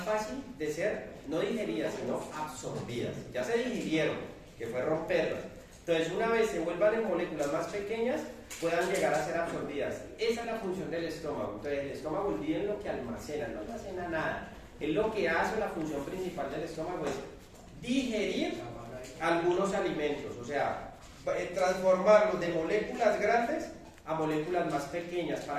fácil de ser, no digeridas, sino absorbidas. Ya se digirieron, que fue romperlas. Entonces, una vez se vuelvan en moléculas más pequeñas, puedan llegar a ser absorbidas. Esa es la función del estómago. Entonces, el estómago, olviden lo que almacena, no almacena nada. Es lo que hace, la función principal del estómago es digerir algunos alimentos, o sea, transformarlos de moléculas grandes a moléculas más pequeñas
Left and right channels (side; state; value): both; identical; correlation 1.00